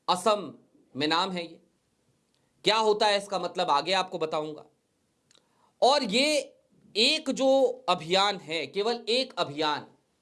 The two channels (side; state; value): both; identical; correlation 1.00